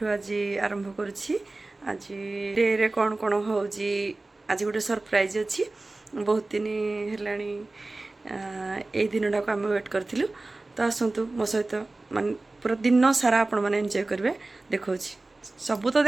आज आरंभ करछि आज डे रे कोन कोन होउजी आज गोटे सरप्राइज अछि बहुत दिन हेलानी ए दिनडा को हम वेट करथिलु तो आसंतु मो सहित मान पूरा दिन सारा आपण माने एन्जॉय करबे देखौछि सबू तो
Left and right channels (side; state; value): left; quieter; 3.1 dB